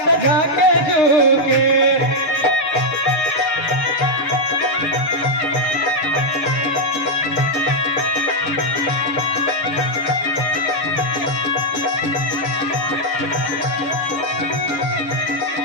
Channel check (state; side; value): late; right; 7.0 ms